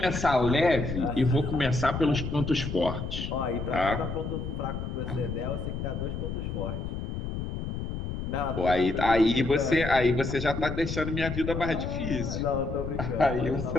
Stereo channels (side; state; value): left; noise; rumble, 5 dB below the sound